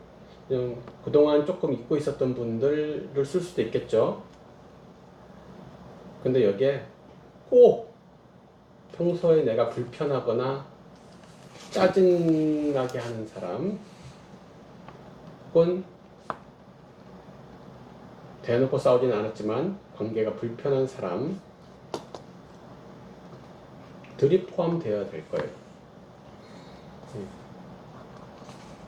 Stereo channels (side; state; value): both; identical; correlation 1.00